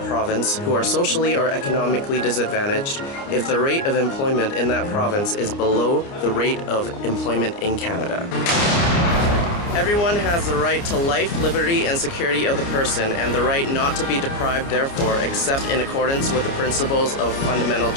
province who are socially or economically disadvantaged if the rate of employment in that province is below the rate of employment in Canada. Everyone has the right to life, liberty, and security of the person, and the right not to be deprived therefore, except in accordance with the principles of fundamental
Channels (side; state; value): right; late; 29 ms